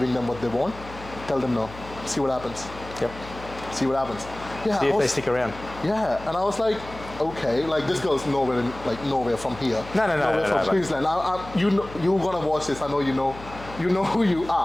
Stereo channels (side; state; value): left; noise; hum, 16 dB below the sound